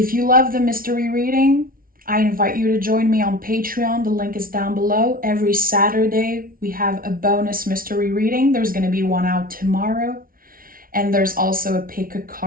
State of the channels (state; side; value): late; left; 0.42 ms